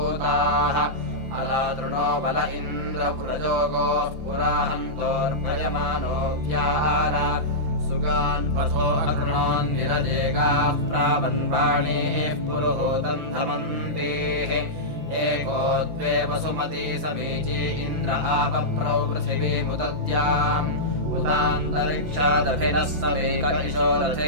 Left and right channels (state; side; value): late; left; 5.9 ms